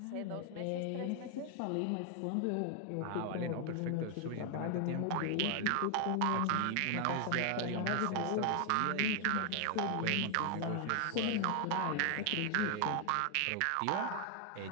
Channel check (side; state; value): both; different; correlation 0.00